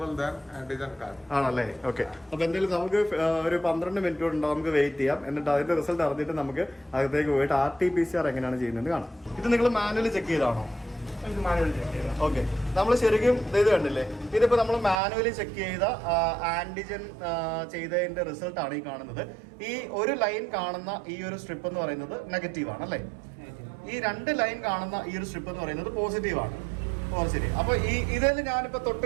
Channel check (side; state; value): left; drops out; at 15.0 s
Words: than antigen card. ആണല്ലേ? ഓക്കെ. അപ്പൊ എന്തായാലും നമുക്ക് ഒരു 12 മിനിറ്റ് കൊണ്ട് നമുക്ക് വെയിറ്റ് ചെയ്യാം. എന്നിട്ട് അതിന്റെ റിസൾട്ട് അറിഞ്ഞിട്ട് നമുക്ക് അകത്തേക്ക് പോയിട്ട് RT-PCR എങ്ങനെയാണ് ചെയ്യുന്നത് കാണാം. ഇത് നിങ്ങൾ മാനുവലി ചെക്ക് ചെയ്താണോ? ഓക്കെ. നമ്മൾ ശരിക്കും ഇത് കണ്ടില്ലേ? ഇതിപ്പോ നമ്മൾ മാനുവലി ചെക്ക് ചെയ്ത ആന്റിജൻ ചെയ്തതിന്റെ റിസൾട്ട് ആണ് ഈ കാണുന്നത്. ഈ ഒരു ലൈൻ കാണുന്ന ഈ ഒരു സ്ട്രിപ്പ് എന്ന് പറയുന്നത് നെഗറ്റീവ് ആണ് അല്ലേ? ഈ 2 ലൈൻ കാണുന്ന ഈ ഒരു സ്ട്രിപ്പ് എന്ന് പറയുന്നത് പോസിറ്റീവ് ആണ്. ശരി. അപ്പൊ ഈ ഇതിൽ ഞാനിപ്പോ തൊട്ട്